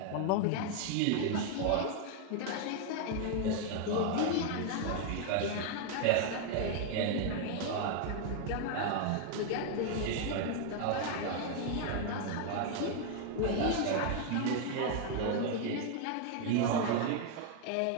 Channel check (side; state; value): both; different; correlation 0.00